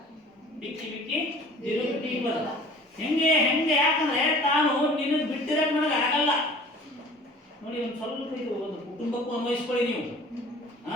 ಬಿಕ್ಕಿ ಬಿಕ್ಕಿ ವಿರುಕ್ತಿ ಪದ. ಹೆಂಗೆ ಯಾಕಂದ್ರೆ ತಾನು ನಿನ್ನ ಬಿಟ್ಟಿರಕ್ ನನಗೆ ಆಗಲ್ಲ. ನೋಡಿ, ಒಂದು ಸ್ವಲ್ಪ ಇದು ಒಂದು ಕುಟುಂಬಕ್ಕೂ ಅನ್ವಯಿಸ್ಕೊಳ್ಳಿ ನೀವು.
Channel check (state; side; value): normal; both; correlation 0.46